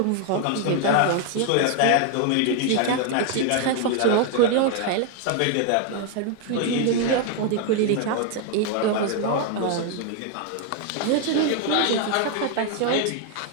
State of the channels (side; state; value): both; different; correlation 0.01